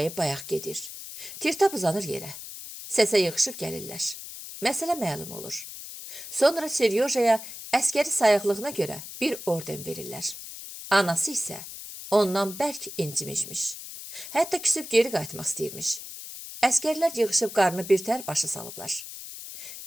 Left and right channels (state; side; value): noise; left; hiss, 11 dB below the sound